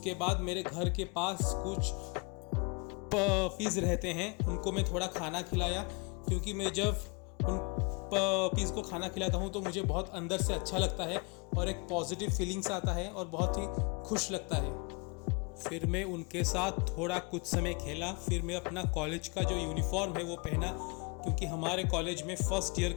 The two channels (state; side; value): quieter; right; 31.7 dB